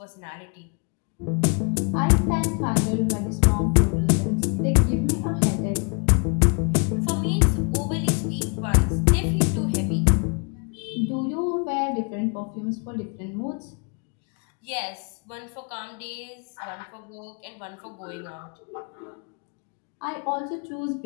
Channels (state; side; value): quieter; right; 36.1 dB